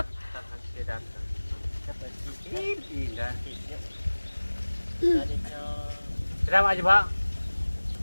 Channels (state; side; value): inverted; both; correlation -1.00